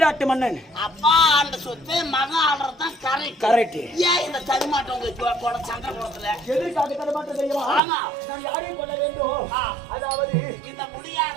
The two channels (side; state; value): left; drops out; at 7.8 s